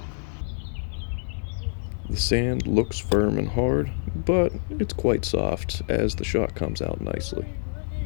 The sand looks firm and hard, but it's quite soft as the shot comes out nicely.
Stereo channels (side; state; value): right; silent; digital silence